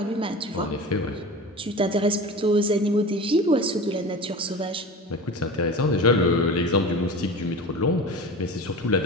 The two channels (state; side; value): normal; both; correlation 0.32